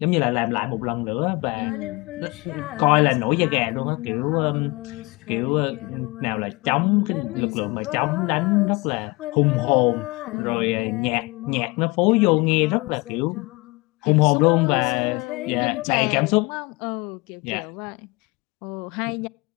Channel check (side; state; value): right; quieter; 25.0 dB